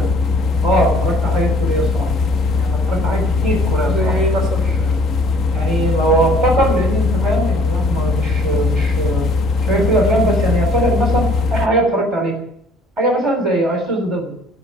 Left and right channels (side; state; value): both; normal; correlation 0.56